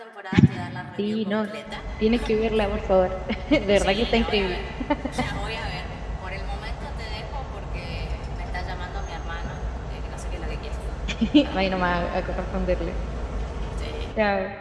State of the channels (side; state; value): both; identical; correlation 1.00